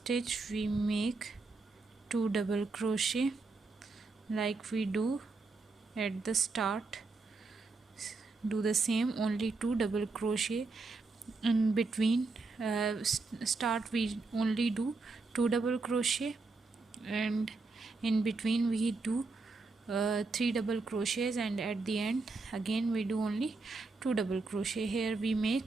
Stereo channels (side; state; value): left; quieter; 3.8 dB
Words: we make 2 double crochet like we do at the start. Do the same, only 2 double crochet in between. Start we only do 2 double crochet and in between we do 3 double crochets, and at the end again we do only 2 double crochet. Here we